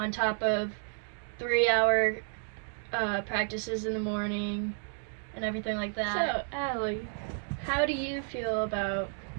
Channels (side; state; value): left; silent; 57 dB below the other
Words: top of 3-hour practices in the morning and everything like that. So, Allie, how do you feel about